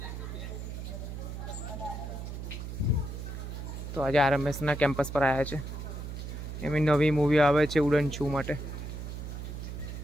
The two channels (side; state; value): right; noise; hum, 7 dB below the sound